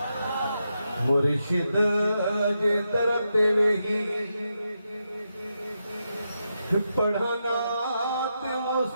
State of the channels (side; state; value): both; inverted; correlation -0.86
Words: मुर्शिद दे दर तेरे ही पढ़ाना ते